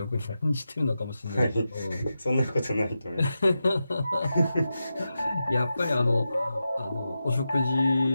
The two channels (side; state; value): both; inverted; correlation -0.90